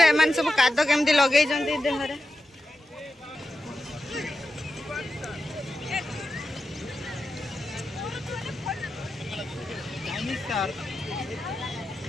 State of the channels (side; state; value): both; normal; correlation 0.90